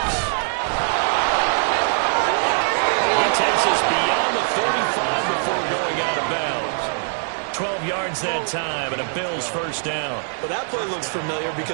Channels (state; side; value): silent; left; digital silence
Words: He takes us beyond the 35 before going out of bounds. 12 yards that time, and a Bills 1st down. Well, that play looks familiar